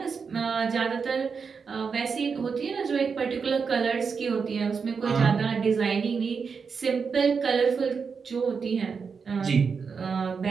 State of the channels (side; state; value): left; quieter; 5.6 dB